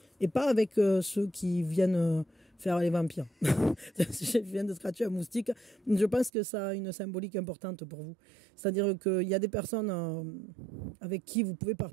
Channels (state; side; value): drops out; left; at 6.3 s